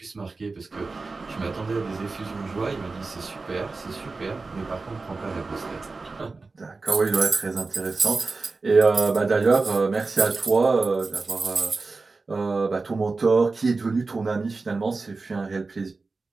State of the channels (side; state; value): left; quieter; 3.9 dB